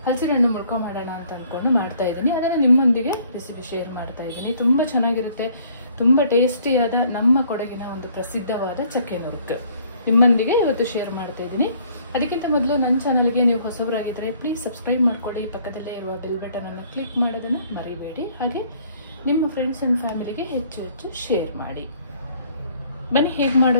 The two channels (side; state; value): both; inverted; correlation -0.60